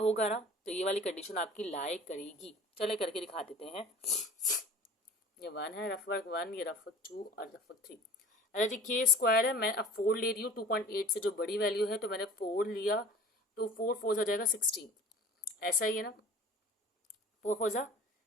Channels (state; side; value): normal; both; correlation 0.43